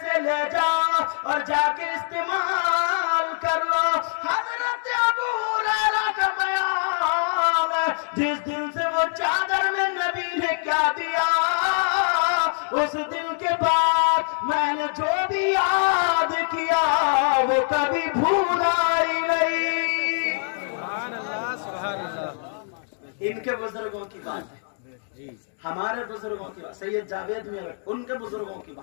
سے لے جاؤ اور جا کے استعمال کر لو۔ حضرت ابو ہریرہ کا بیان ہے، جس دن سے وہ چادر میں نبی نے کیا دیا، اس دن کے بعد میں نے جو بھی یاد کیا وہ کبھی بھولا ہی نہیں۔ سبحان اللہ سبحان اللہ۔ ان کے بزرگوں کی بات ہے، ہمارے بزرگوں کی بات، سید جاوید میں ان کے بزرگوں کی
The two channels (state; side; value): silent; right; 62 dB below the other